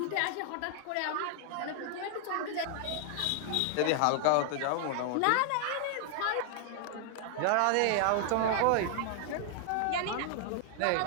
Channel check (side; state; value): both; different; correlation 0.00